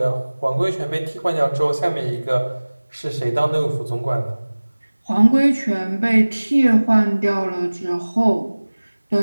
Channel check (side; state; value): both; inverted; correlation -1.00